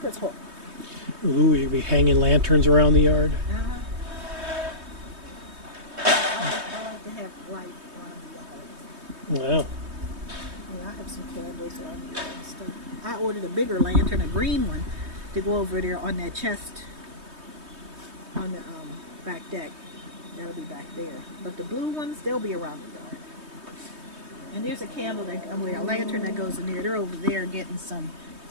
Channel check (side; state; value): left; late; 3.2 ms